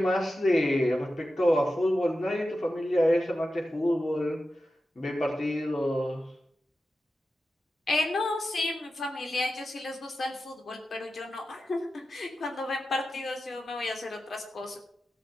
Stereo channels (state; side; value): normal; both; correlation 0.92